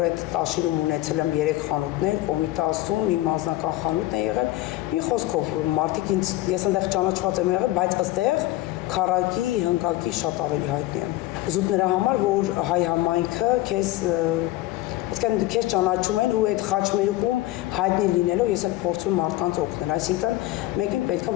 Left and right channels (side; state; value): right; quieter; 16.7 dB